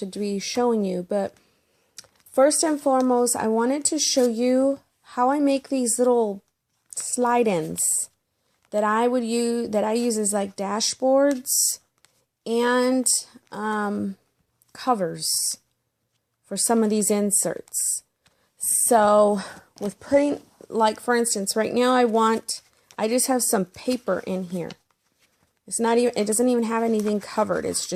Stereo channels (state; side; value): identical; both; correlation 1.00